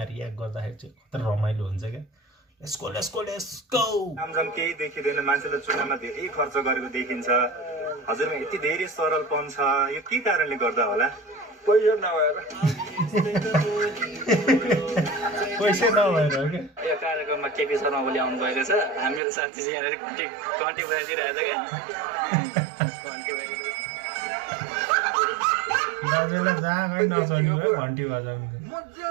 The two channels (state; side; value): drops out; left; at 19.2 s